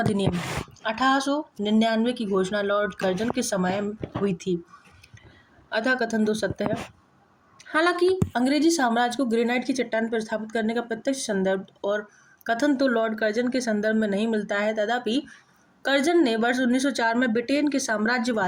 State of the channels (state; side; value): identical; both; correlation 1.00